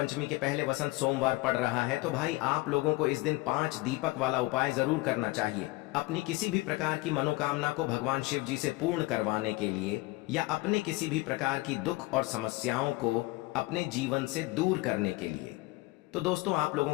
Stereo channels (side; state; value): right; quieter; 21.0 dB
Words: के पहले वसंत सोमवार पड़ रहा है, तो भाई आप लोगों को इस दिन 5 दीपक वाला उपाय जरूर करना चाहिए। अपनी किसी भी प्रकार की मनोकामना को भगवान शिव जी से पूर्ण करवाने के लिए, या अपने किसी भी प्रकार की दुख और समस्याओं को अपने जीवन से दूर करने के लिए। तो दोस्तों, आप लोगों